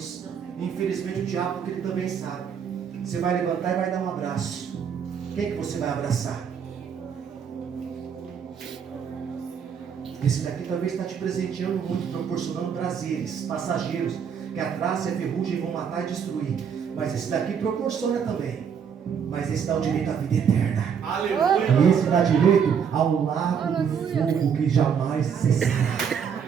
E infelizmente o diabo, porque ele também sabe. Você vai levantar e vai dar um abraço. Quem que você vai abraçar? Esse daqui talvez está te presenteando muito, proporcionando prazeres passageiros, que a traça e a ferrugem vão matar e destruir. Mas esse daqui proporciona também. Mas esse dá o direito à vida eterna. Aleluia. E esse dá direito ao lago do fogo que jamais cessará.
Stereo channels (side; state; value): left; quieter; 7.3 dB